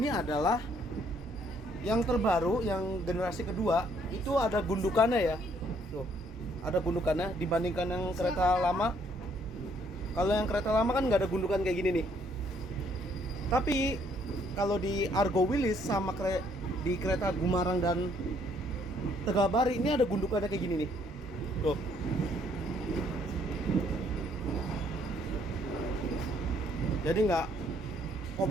adalah yang terbaru, yang generasi kedua itu ada gundukannya ya. Tuh, ada gundukannya dibandingkan yang kereta lama. Kalau yang kereta lama kan nggak ada gundukan kayak gini nih. Tapi kalau di Argo Wheels sama di kereta Gumarang dan Tegabari ini ada gundukannya kayak gini nih. Tuh. Jadi nggak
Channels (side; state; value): both; normal; correlation 0.66